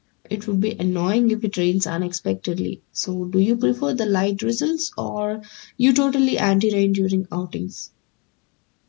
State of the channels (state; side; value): quieter; right; 31.5 dB